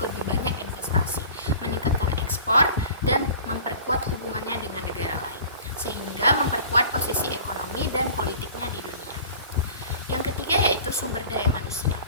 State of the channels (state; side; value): inverted; both; correlation -0.43